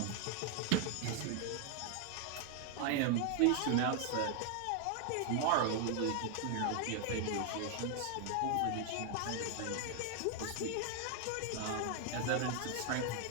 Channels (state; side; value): different; both; correlation 0.00